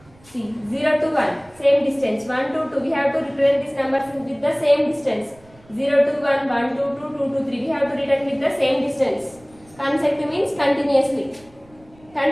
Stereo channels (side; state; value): right; noise; rumble, 27 dB below the sound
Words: See, 0 to 1, same distance. 1 to 2, we have to represent these numbers with the same distance. 0 to 1, 1 to 2, 2 to 3, we have to return with the same distance. Consecutive means continuously,